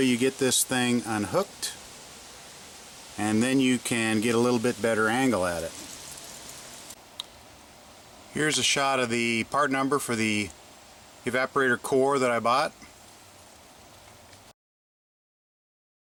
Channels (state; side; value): identical; both; correlation 1.00